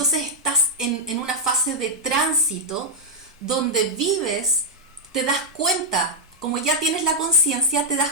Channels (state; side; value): normal; both; correlation -0.03